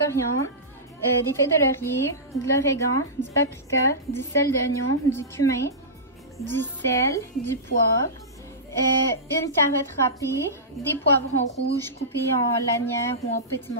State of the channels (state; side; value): normal; both; correlation -0.18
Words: des feuilles de laurier, de l'origan, du paprika, du sel d'oignon, du cumin, du sel, du poivre, une carotte râpée, des poivrons rouges coupés en lanières ou en petits